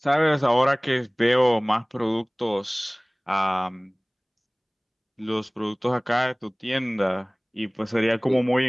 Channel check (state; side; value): identical; both; correlation 1.00